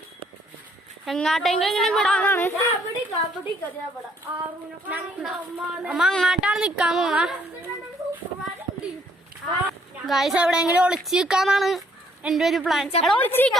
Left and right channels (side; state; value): both; normal; correlation 0.66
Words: എങ്ങാട്ടെങ്കിലും വിടാനാണ്. അമ്മ അങ്ങാട്ടാണ് നിക്കാൻ പോണ ഗൈസ്. എവിടെയെങ്കിലും ഒളിച്ചു നിൽക്കാന്നാണ് എന്റെ ഒരു പ്ലാൻ. ഒളിച്ചു